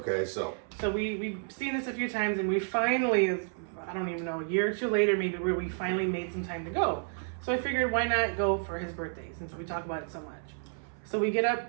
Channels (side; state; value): left; silent; 57 dB below the other